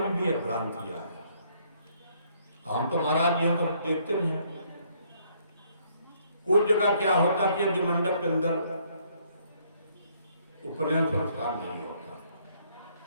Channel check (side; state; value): both; inverted; correlation -0.67